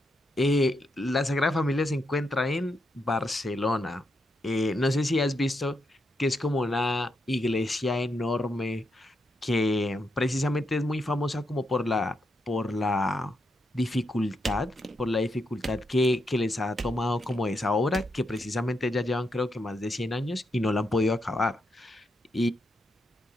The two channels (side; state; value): both; normal; correlation 0.82